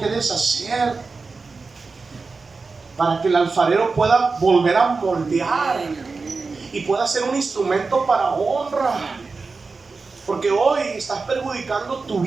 deshacer para que el alfarero pueda volver a moldear y pueda ser un instrumento para honra. Porque hoy estás perjudicando tu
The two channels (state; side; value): quieter; left; 4.2 dB